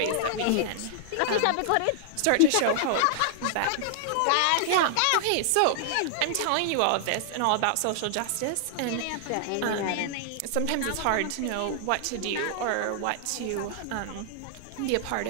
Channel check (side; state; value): both; different; correlation -0.01